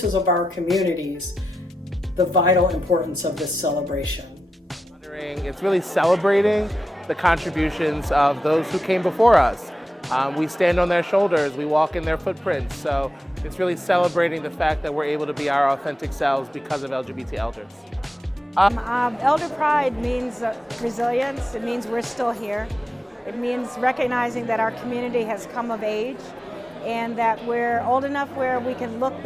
of our communities the vital importance of this celebration. It's really celebrating the contributions of those who came before us. We stand on their shoulders, we walk in their footprints, so it's really celebrating the fact that we're able to be our authentic selves because of LGBT elders. Elder Pride means resilience. It means we're still here. It means recognizing that our community has come of age and that we're old enough where we can look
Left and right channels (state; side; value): normal; both; correlation 0.90